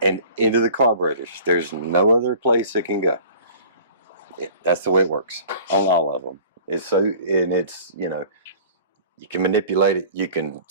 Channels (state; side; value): inverted; both; correlation -0.46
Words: and into the carburetors. There's no other place it can go. That's the way it works on all of them. It's so, and it's, you know, you can manipulate it, you can